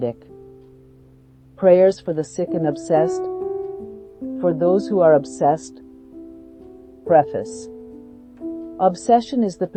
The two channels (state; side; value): identical; both; correlation 1.00